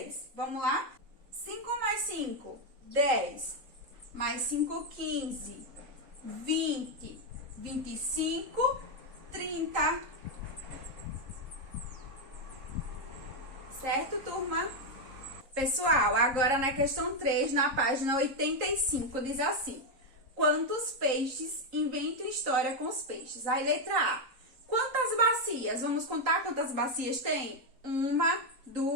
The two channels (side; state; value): left; late; 3.8 ms